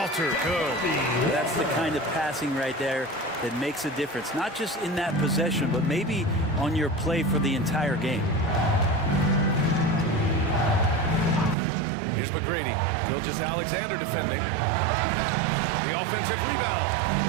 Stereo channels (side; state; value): left; drops out; at 11.6 s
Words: good. That's the kind of passing right there that makes a difference, not just in that possession, but maybe on your play for the entire game. Here's McGrady. Gilgeous-Alexander defending. The offensive